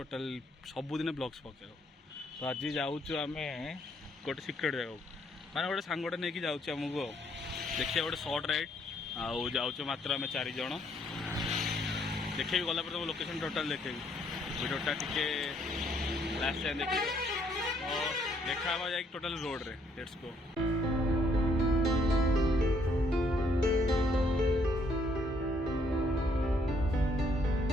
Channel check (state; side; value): normal; both; correlation 0.68